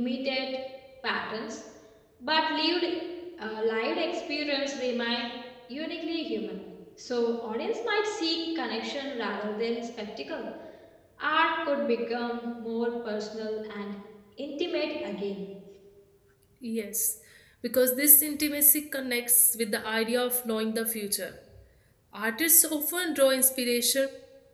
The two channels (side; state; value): both; identical; correlation 1.00